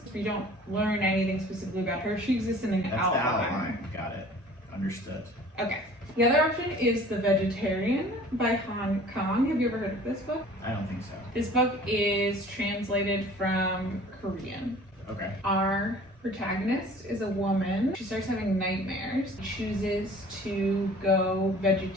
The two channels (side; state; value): both; normal; correlation 0.48